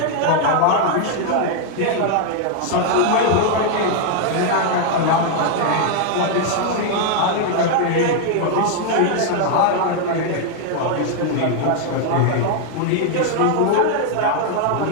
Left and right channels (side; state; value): both; different; correlation 0.00